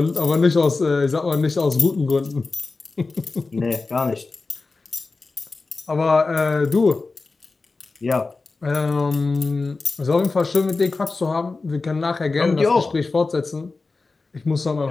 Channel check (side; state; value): right; quieter; 3.8 dB